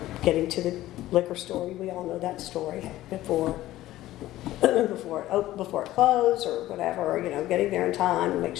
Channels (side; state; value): right; quieter; 15.3 dB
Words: getting to the liquor store. We all know that story before it closed or whatever, getting there in time and make